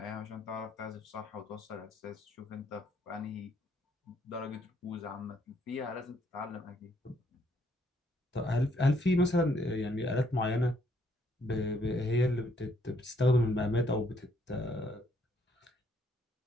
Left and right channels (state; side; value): normal; both; correlation 0.69